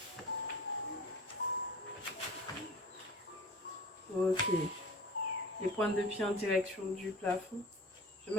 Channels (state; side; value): normal; both; correlation 0.40